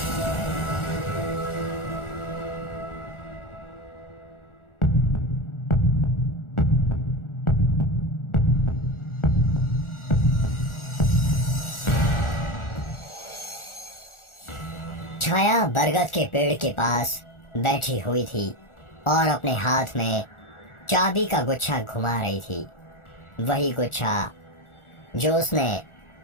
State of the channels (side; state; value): right; late; 1.4 ms